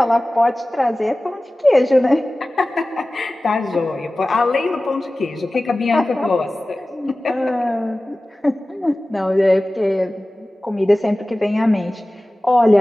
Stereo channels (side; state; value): both; normal; correlation 0.97